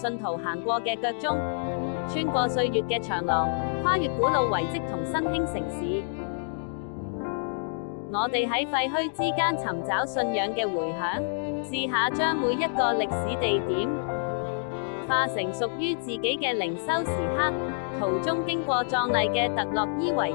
徒行過嘅腳蹤，穿過歲月嘅長廊，跨越古老遺跡同新興城市。我哋喺廢墟之間尋找信仰嘅回響，試下將每一個歷史地點化成屬於自己嘅靈修時刻。途中經過壯麗嘅特洛伊遺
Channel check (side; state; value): right; silent; digital silence